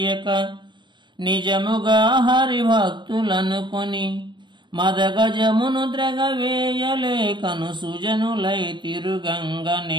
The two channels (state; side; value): late; left; 0.22 ms